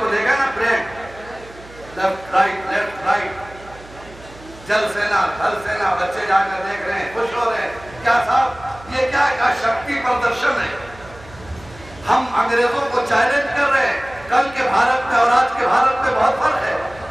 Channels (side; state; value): right; noise; hum, 20 dB below the sound